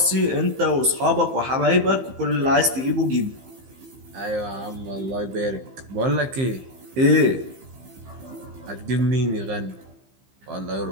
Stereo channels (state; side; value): late; left; 15 ms